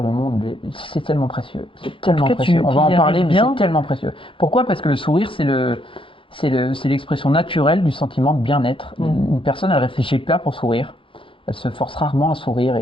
le monde. C'est tellement précieux. C'est tellement précieux. On va en parler, mais c'est tellement précieux. Pourquoi? Parce que le sourire, c'est l'expression naturelle du sentiment de bien-être. Une personne, elle réfléchit pas pour sourire. Elle se force rarement à sourire.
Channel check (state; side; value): late; right; 0.25 ms